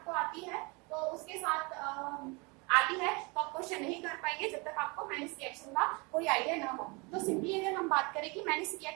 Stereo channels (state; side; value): quieter; left; 28.8 dB